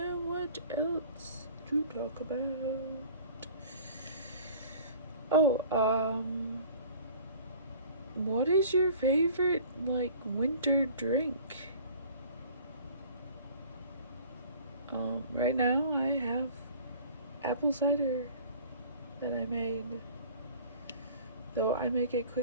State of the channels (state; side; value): inverted; both; correlation -0.47